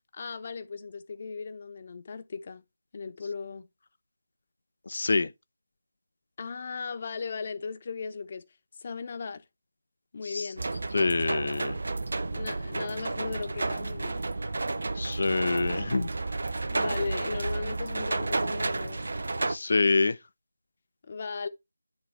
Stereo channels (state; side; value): inverted; both; correlation -0.93